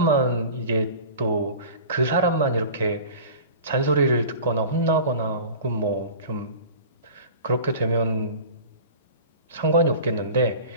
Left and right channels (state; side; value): inverted; both; correlation -0.38